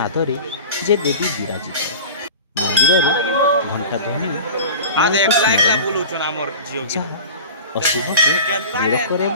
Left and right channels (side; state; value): both; inverted; correlation -0.35